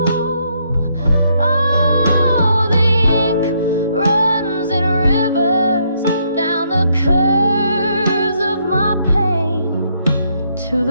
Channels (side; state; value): both; inverted; correlation -0.73